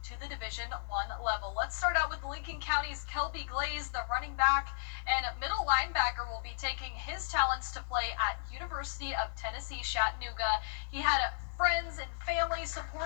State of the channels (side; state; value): right; silent; digital silence